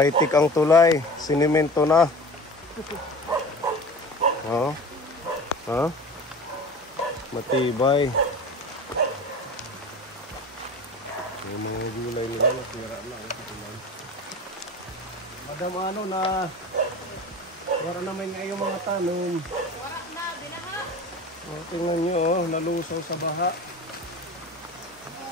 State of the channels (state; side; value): normal; both; correlation 0.36